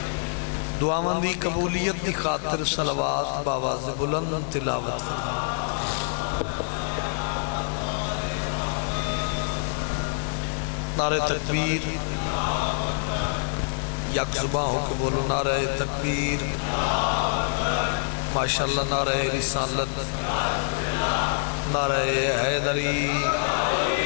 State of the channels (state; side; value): silent; right; digital silence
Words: دعاواں دی قبولیت دی خاطر صلوات باواز بلند تلاوت فرما۔ نعرہ تکبیر، یک زباں ہو کے بولو نعرہ تکبیر، ماشاءاللہ نعرہ رسالت، نعرہ حیدری۔